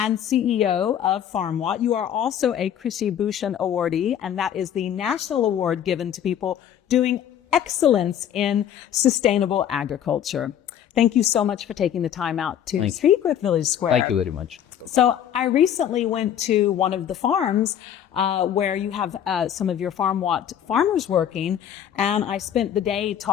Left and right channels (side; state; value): right; quieter; 9.8 dB